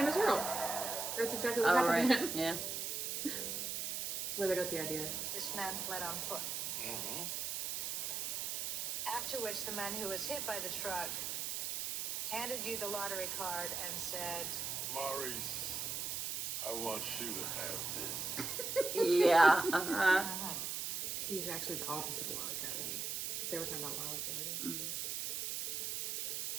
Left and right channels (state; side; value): noise; right; hiss, 2 dB below the sound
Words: is Earl. That's exactly what All happened to right. him. Yeah. That's where they got the idea. This man fled on foot. Mm-hmm. After which the man who was hit by the truck handed you the lottery card and said, Maurice, I want you to have this. Yeah. Uh-huh. He's actually the opposite of Wile E. Coyote. Because they were talking about Wile E. Coyote. Mhm.